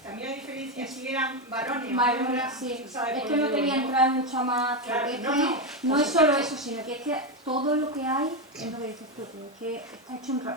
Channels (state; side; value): normal; both; correlation 0.09